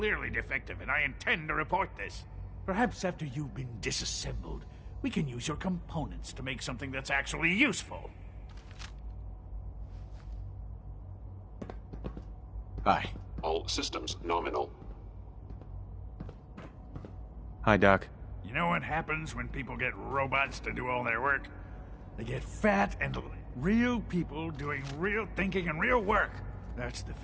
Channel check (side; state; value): both; identical; correlation 1.00